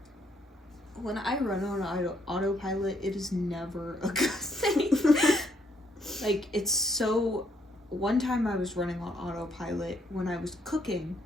When I run on autopilot, it is never a good thing. Like, it's so... One time I was running on autopilot when I was cooking.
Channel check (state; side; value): normal; both; correlation 0.71